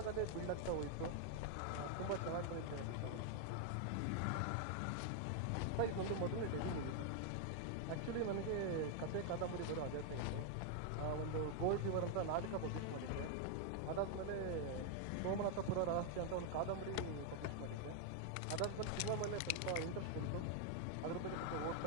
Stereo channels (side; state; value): both; different; correlation 0.00